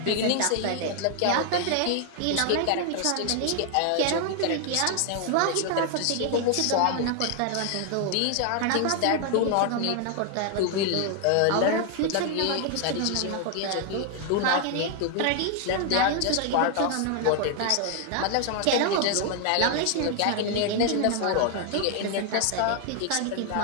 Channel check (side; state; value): both; different; correlation 0.00